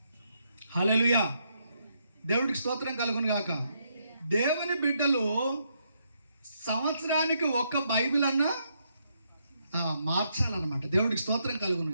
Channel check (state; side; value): inverted; both; correlation -0.77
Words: హల్లెలూయా. దేవుడికి స్తోత్రం కలుగును గాక. దేవుని బిడ్డలు సంవత్సరానికి ఒక్క బైబిల్ అన్నా మార్చాలన్నమాట. దేవుడికి స్తోత్రం కలుగును